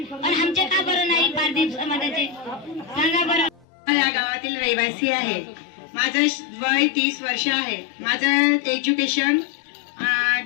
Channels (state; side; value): drops out; right; at 3.7 s